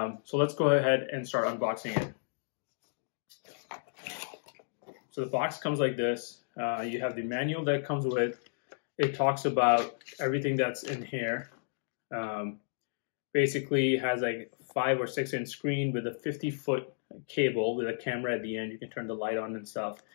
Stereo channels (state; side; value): silent; right; digital silence